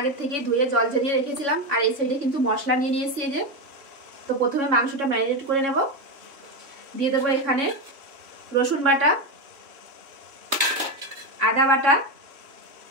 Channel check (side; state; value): left; late; 3.5 ms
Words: থেকেই ধুয়ে জল ঝরিয়ে রেখেছিলাম। আর এই সাইডে কিন্তু মশলা নিয়ে নিয়েছি। এই যে, তো প্রথমে মাংসটা ম্যারিনেট করে নেব। দিয়ে দেবো এখানে রসুন বাটা, আদা বাটা,